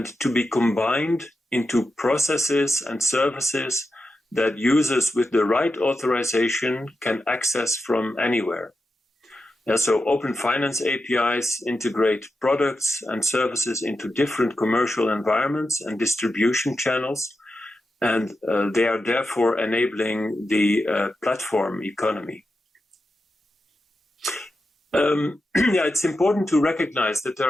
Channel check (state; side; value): normal; both; correlation 0.89